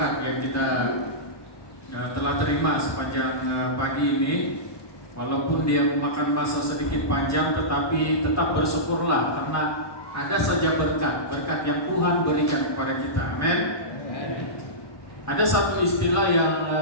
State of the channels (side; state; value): right; late; 1.2 ms